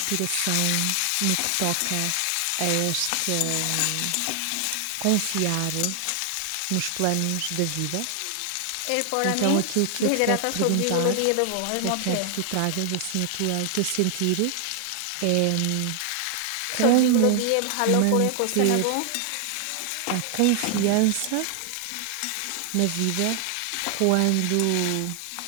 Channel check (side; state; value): both; different; correlation 0.00